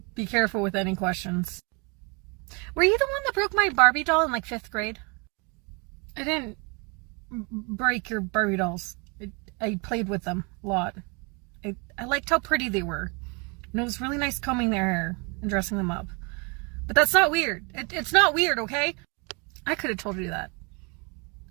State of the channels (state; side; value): quieter; left; 31.5 dB